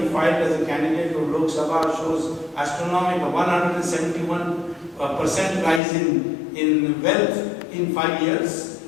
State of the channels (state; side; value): drops out; right; at 5.8 s